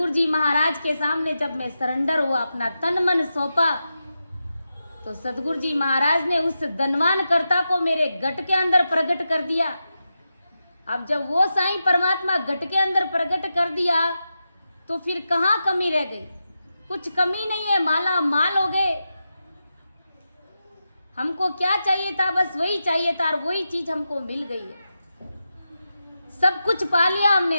जी महाराज के सामने जब मैं सरेंडर हुआ, अपना तन मन सौंपा, तो सतगुरु जी महाराज ने उस धनवान कर्ता को मेरे गट के अंदर प्रकट कर दिया। अब जब वो साईं परमात्मा गट के अंदर प्रकट कर दिया तो फिर कहाँ कमी रह गई? कुछ कमी नहीं है, माला माल हो गए। हमको क्या चाहिए था? बस वही चाहिए था और वही चीज हमको मिल गई है। सब कुछ पा लिया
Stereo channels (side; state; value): both; inverted; correlation -0.90